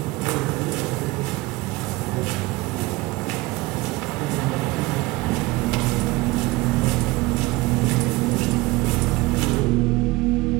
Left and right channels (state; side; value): quieter; left; 21.1 dB